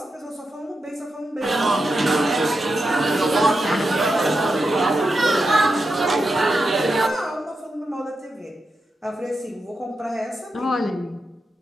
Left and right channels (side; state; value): both; normal; correlation 0.87